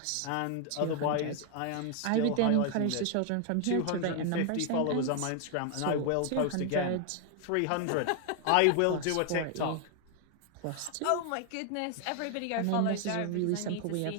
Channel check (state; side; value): different; both; correlation 0.00